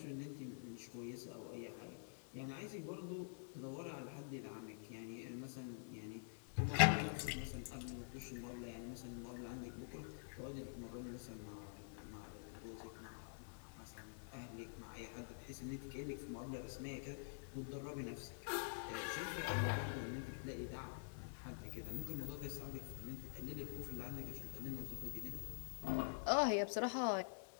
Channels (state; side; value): silent; right; digital silence